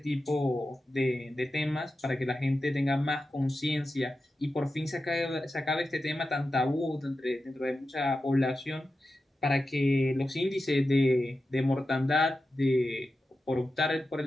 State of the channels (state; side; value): normal; both; correlation 0.91